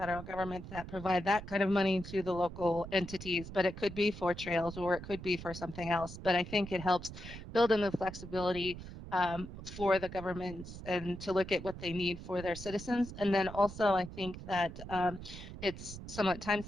government that provide that kind of money to the local entities, but it could be for trails or it could be for something else. But I think it helps build in the flexibility for the governments and to look at what they need for their citizens. And then also, I think that it's somewhat time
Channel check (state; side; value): noise; right; rumble, 11 dB below the sound